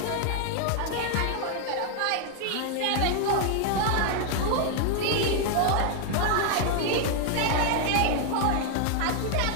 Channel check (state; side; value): different; both; correlation 0.00